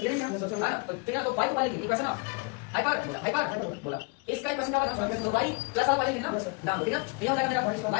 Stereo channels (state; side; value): quieter; right; 31.1 dB